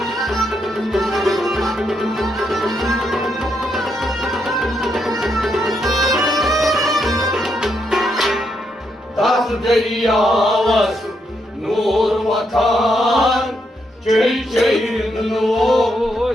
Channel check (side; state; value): both; normal; correlation 0.79